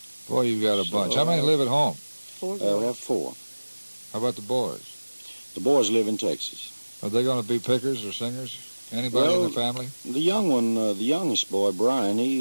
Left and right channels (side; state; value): both; inverted; correlation -1.00